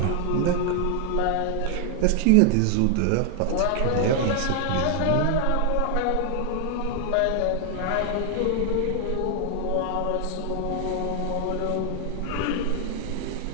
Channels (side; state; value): both; different; correlation 0.00